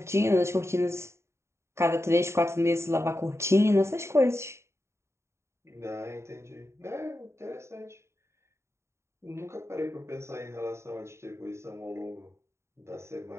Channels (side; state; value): left; late; 0.13 ms